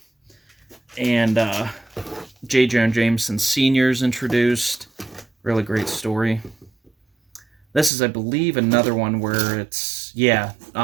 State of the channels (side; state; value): left; drops out; at 7.9 s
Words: and J. Jonah Jameson Sr.'s introduced. Really great story. This is, I believe, another one where it's